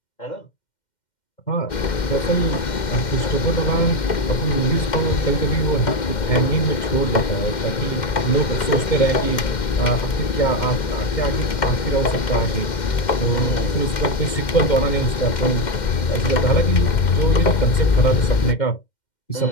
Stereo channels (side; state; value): right; late; 2.1 ms